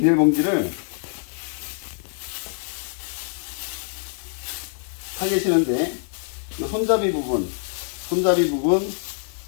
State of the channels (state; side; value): silent; right; 56 dB below the other